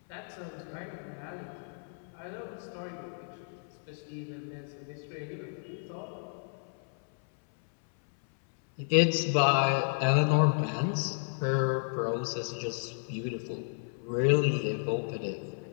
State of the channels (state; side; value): silent; right; 56 dB below the other